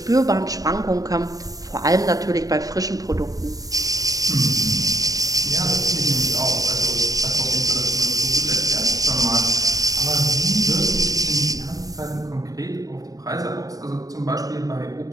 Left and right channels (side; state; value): left; late; 0.17 ms